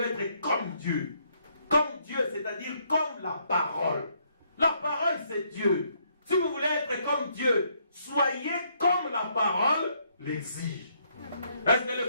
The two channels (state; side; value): inverted; both; correlation -0.71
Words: être comme Dieu. Comme Dieu, c'est-à-dire comme la parole. La parole, c'est Dieu. Si vous voulez être comme Dieu, soyez comme la parole l'exige. Est-ce que les